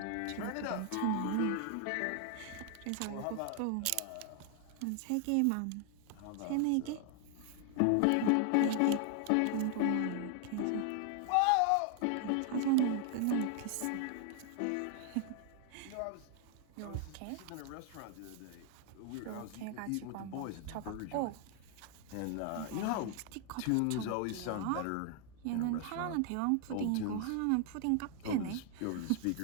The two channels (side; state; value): both; different; correlation 0.00